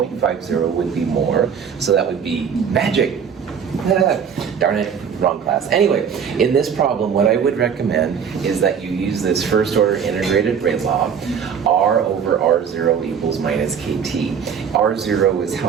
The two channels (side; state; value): left; quieter; 7.2 dB